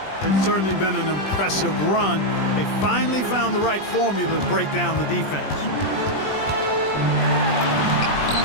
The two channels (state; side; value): late; right; 20 ms